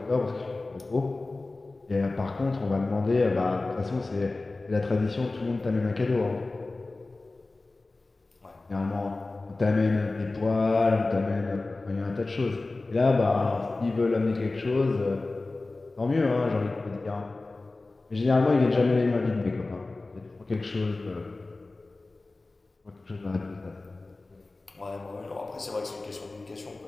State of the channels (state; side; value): quieter; right; 3.2 dB